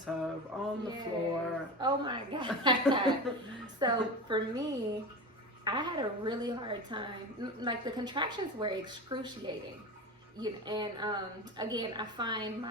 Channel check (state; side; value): normal; both; correlation 0.26